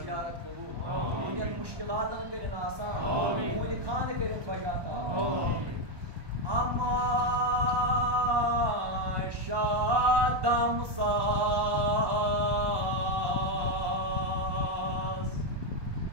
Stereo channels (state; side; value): late; left; 1.1 ms